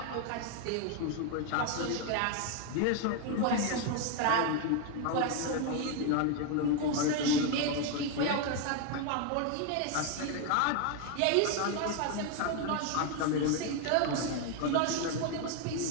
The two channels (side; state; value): both; different; correlation 0.01